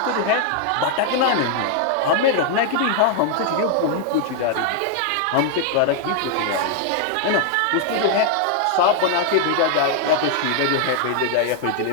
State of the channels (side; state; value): both; different; correlation 0.00